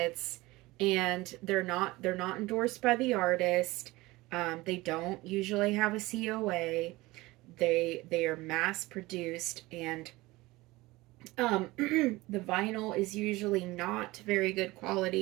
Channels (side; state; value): left; quieter; 20.3 dB